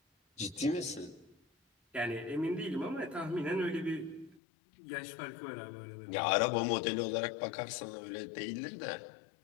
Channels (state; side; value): drops out; right; at 4.4 s